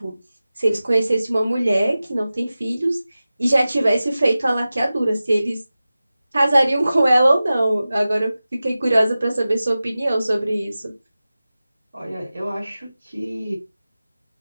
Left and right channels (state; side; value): inverted; both; correlation -0.95